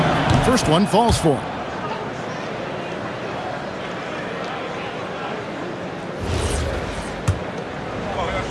2. First one falls for him.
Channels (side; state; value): both; identical; correlation 1.00